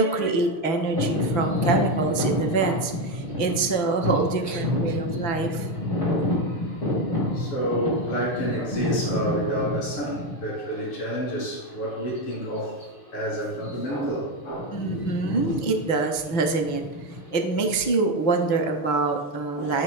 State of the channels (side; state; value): right; late; 6.0 ms